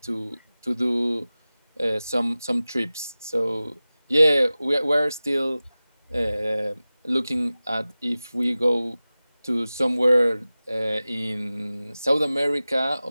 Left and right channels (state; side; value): inverted; both; correlation -0.97